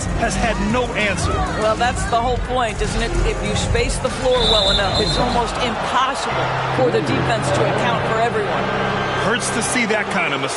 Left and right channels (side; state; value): both; identical; correlation 1.00